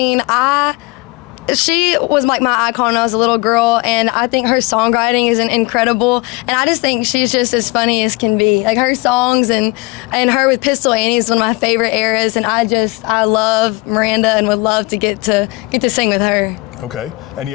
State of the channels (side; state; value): right; quieter; 25.0 dB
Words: she was like my icon when I was a little girl, and I think her songwriting is incredible, and I just think she's just as funny as can be. Like her songs and her with Pistol Annie is one of my favorite eras, and I love Miranda and would love to get to sing with her. Okay.